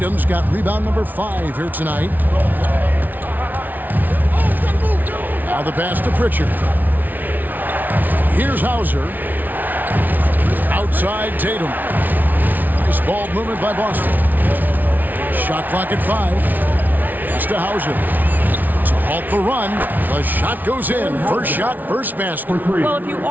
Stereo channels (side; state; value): left; late; 0.082 ms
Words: got rebound number 5 here tonight. Now the pass to Pritchard. Here's Hauser. Outside Tatum. Nice ball movement by Boston. Shot clock at 5. Pass to Hauser. To halt the run. The shot goes in. First shot, first basket. Well, if you